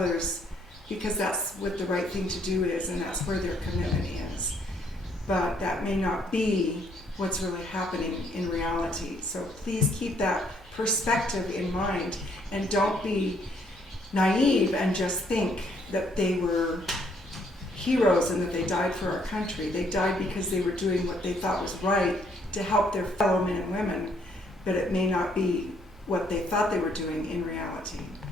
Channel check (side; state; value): both; normal; correlation 0.68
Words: because that's what the right thing to do is, and that's where their commitment is. But that may not be what's really happening in reality. So please keep that perspective in mind, and don't be naive and just think that they were heroes and that they died for our country. They died because they were doing what they thought was right to help their fellow men and women, but it may not be what they thought they were doing in reality.